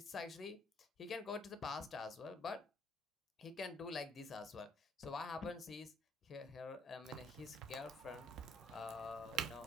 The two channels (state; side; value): normal; both; correlation 0.65